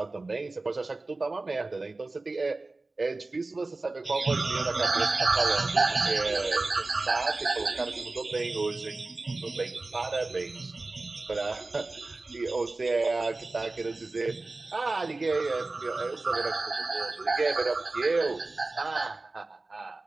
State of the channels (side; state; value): left; quieter; 3.3 dB